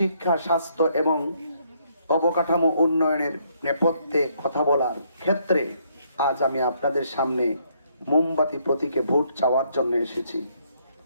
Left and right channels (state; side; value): inverted; both; correlation -0.70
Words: স্বাস্থ্য এবং অবকাঠামো উন্নয়নের নেপথ্যে কথা বলার ক্ষেত্রে আজ আমি আপনাদের সামনে মোমবাতি প্রতীকে ভোট চাওয়ার জন্য এসেছি।